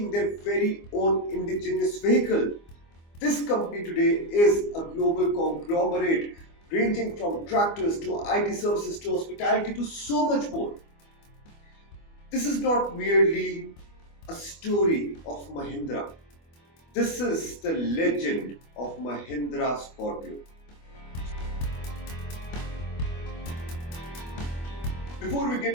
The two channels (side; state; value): right; late; 24 ms